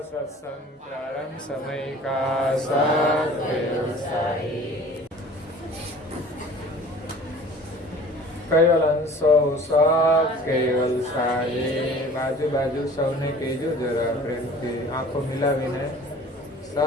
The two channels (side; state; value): both; normal; correlation 0.46